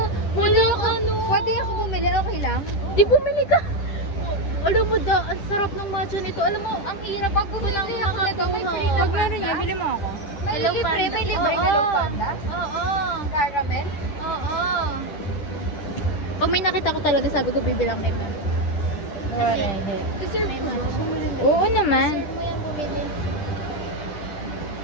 Walang ano. Pwede ako bumili, okay lang? Di bumili ka. Alam mo da, ang sarap ng matcha nito. Alam mo, ang hirap ko lang makakuha. Pag meron niya, bili mo ako. Hello, Panda. May libre Hello Panda? Oo. Caramel? Oo. Pag may nakita ko talaga, sabi ko bibilang nito. Kasi may matcha. Oo naman. Serve mo yan bumili.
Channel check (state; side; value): late; right; 10 ms